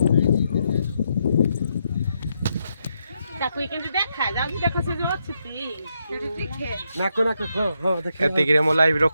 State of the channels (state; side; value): inverted; both; correlation -0.81